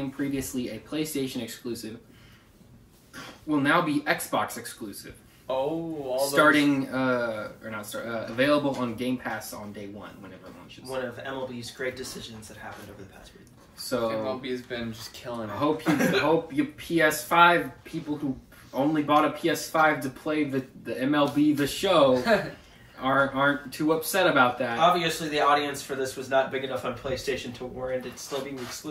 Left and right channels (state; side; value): identical; both; correlation 1.00